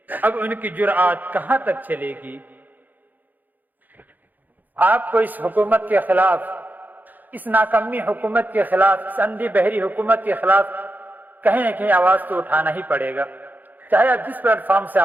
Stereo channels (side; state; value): left; late; 0.084 ms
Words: اب ان کی جرأت کہاں تک چلے گی۔ آپ کو اس حکومت کے خلاف، اس ناکامی حکومت کے خلاف، اس اندھی بہری حکومت کے خلاف کہیں نہ کہیں آواز تو اٹھانا ہی پڑے گا، چاہے آپ جس پلیٹ فارم سے